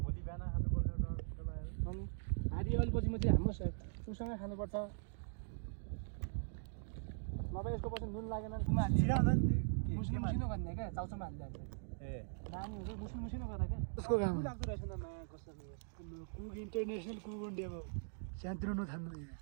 भोलि बिहान खानुपर्छ अनि हारी अलिपछि म चाहिँ हाम्रो उसँगै खानुपर्छ नभए यसको पछि नुन लागेन मुस्लिम मुसिनो गर्ने क्या चाउचाउमा हालिदिएको ए नानीहरू मुस्लिम मुसिनो गर्दा क्या उसको काम लाग्दो रहेछ न माया कसरी कुक इन्टरनेसनल कुक इन्डिया भयो सानोतिनो नथान्नु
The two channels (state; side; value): silent; left; digital silence